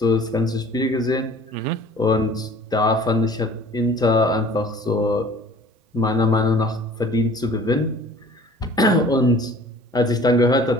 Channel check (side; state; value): both; normal; correlation 0.48